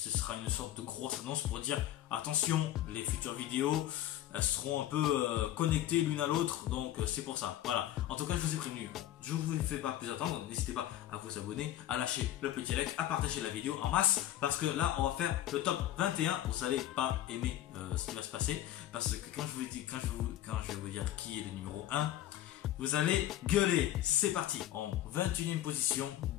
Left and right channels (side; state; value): right; quieter; 12.9 dB